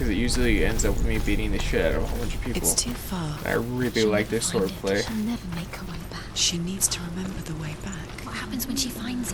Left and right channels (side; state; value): both; identical; correlation 1.00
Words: it usually ends up with me beating the shit out of a whole bunch of people. It's too far. I really like this sword play. She'll never make her way back. She needs to remember the way back. What happens when she finds